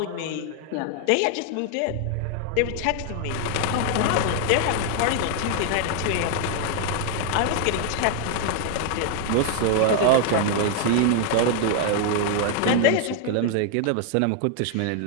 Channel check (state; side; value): different; both; correlation 0.00